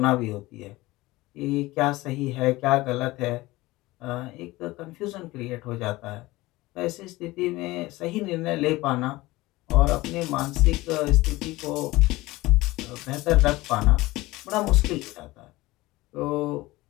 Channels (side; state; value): right; quieter; 19.6 dB